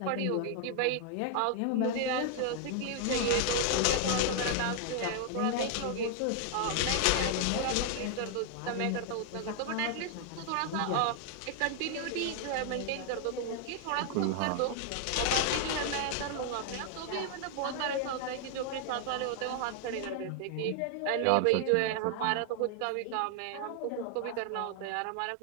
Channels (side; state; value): both; different; correlation 0.00